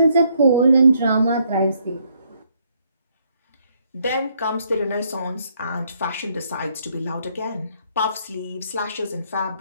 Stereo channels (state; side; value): inverted; both; correlation -0.70